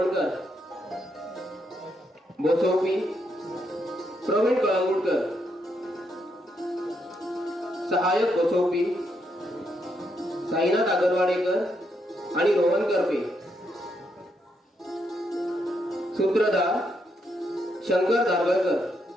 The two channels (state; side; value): normal; both; correlation 0.78